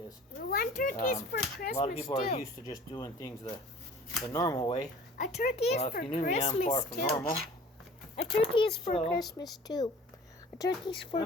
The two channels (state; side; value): normal; both; correlation 0.46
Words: One turkey is for Christmas A lot of people too. are used to just doing things the normal way. A turkey is Well, for if you knew me, I'm far Christmas from too. normal. A turkey is for So, Christmas too. A turkey's for